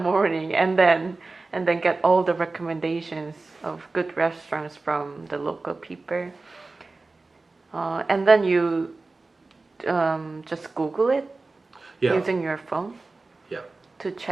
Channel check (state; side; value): quieter; left; 3.5 dB